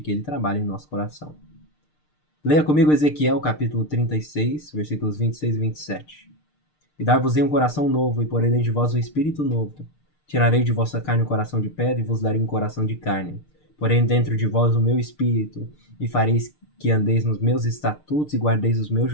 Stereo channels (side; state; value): right; late; 6.6 ms